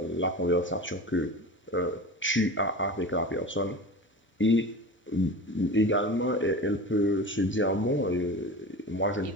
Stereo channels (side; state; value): both; normal; correlation 0.32